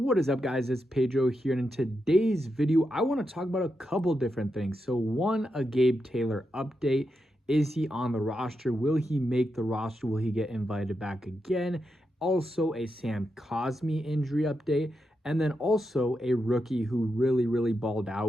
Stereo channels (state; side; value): normal; both; correlation 0.86